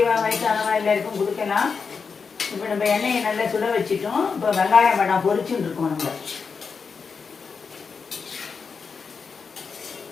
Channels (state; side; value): quieter; right; 5.4 dB